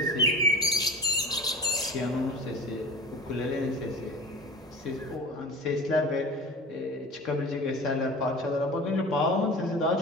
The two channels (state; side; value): normal; both; correlation 0.35